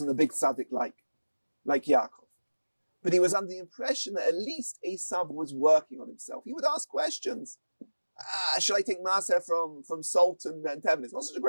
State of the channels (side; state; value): both; inverted; correlation -1.00